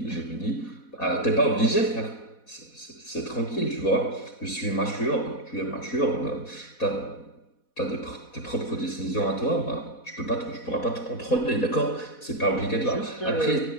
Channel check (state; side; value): late; right; 4.1 ms